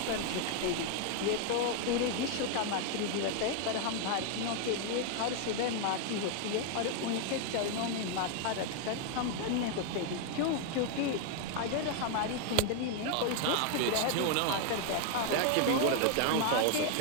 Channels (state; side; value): different; both; correlation 0.00